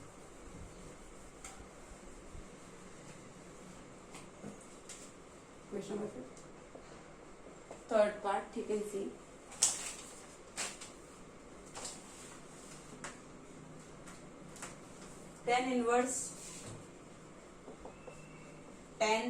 Question number 5th. Third part, you can see. Tan inverse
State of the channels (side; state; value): both; identical; correlation 1.00